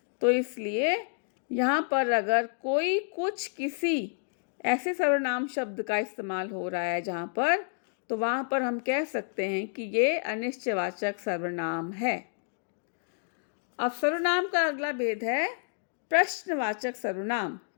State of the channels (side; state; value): right; silent; digital silence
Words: तो इसलिए यहाँ पर अगर कोई, कुछ, किसी ऐसे सर्वनाम शब्द का इस्तेमाल हो रहा है जहाँ पर, तो वहाँ पर हम कह सकते हैं कि ये अनिश्चयवाचक सर्वनाम है। अब सर्वनाम का अगला भेद है प्रश्नवाचक सर्वनाम,